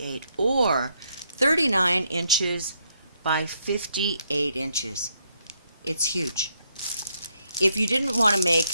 or 39 inches by 58 inches. It's huge. If you didn't want to make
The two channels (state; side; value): inverted; both; correlation -0.75